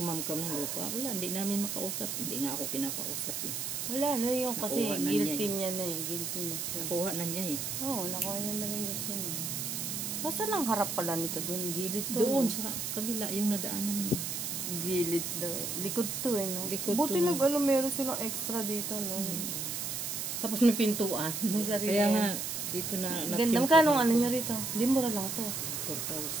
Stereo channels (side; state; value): right; noise; hiss, 3 dB below the sound